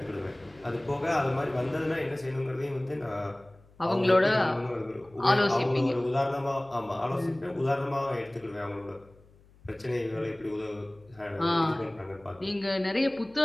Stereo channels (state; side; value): noise; left; hum, 27 dB below the sound